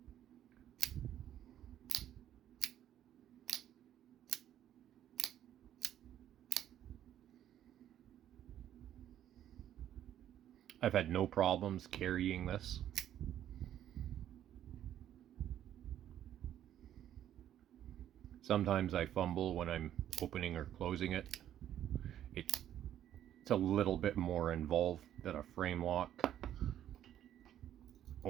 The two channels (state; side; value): quieter; left; 11.2 dB